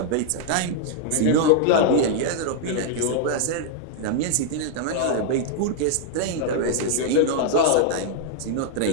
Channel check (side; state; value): both; different; correlation -0.01